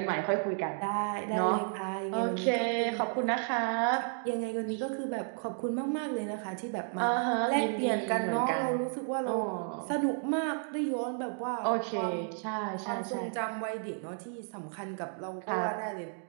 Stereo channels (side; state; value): left; silent; 56 dB below the other